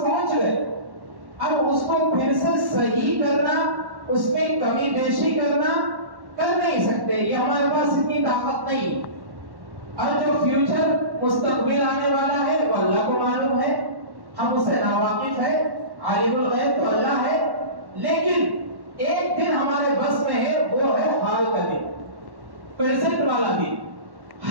پہنچ گئے. اب اس کو پھر سے صحیح کرنا، اس میں کمی بیشی کرنا کر نہیں سکتے، یہ ہمارے پاس اتنی طاقت نہیں. اور جو فیوچر مستقبل آنے والا ہے وہ اللہ کو معلوم ہے، ہم اسے ناواقف ہے. عالم الغیب تو اللہ ہے، لیکن ایک دن ہمارے بس میں ہے، وہ ہے حال کا دن، پریزنٹ والا دن.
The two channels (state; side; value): late; left; 1.1 ms